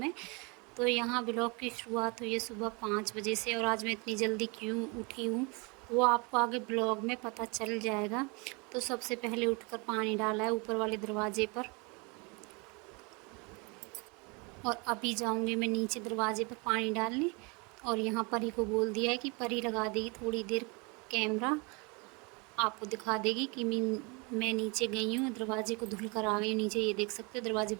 तो यहाँ ब्लॉग की शुरुआत हुई है सुबह 5 बजे से, और आज मैं इतनी जल्दी क्यों उठी हूँ वो आपको आगे ब्लॉग में पता चल जाएगा। तो सबसे पहले उठकर पानी डाला है ऊपर वाले दरवाजे पर, और अभी जाऊँगी मैं नीचे दरवाजे पर पानी डालने। और यहाँ परी को बोल दिया है कि परी लगा देगी थोड़ी देर कैमरा, आपको दिखा देगी कि मैं नीचे गई हूँ, दरवाजे को धुल कर आ गई हूँ नीचे। ये देख सकते हो दरवाजे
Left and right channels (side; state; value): left; quieter; 29.9 dB